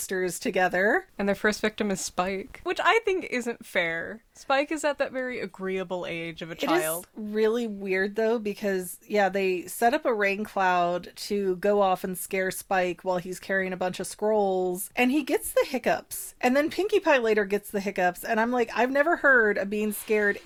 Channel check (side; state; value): both; identical; correlation 1.00